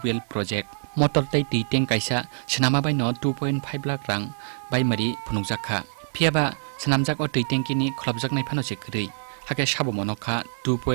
Project. Motor Tai Ti Teng Kaisa, Chanama by no 2.5 lakh rang by Mari Punukjaka. Piaba Sanamjak or Tengkini Klobjak Naipanosik. Hake Shabu Monoka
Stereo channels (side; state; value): left; silent; digital silence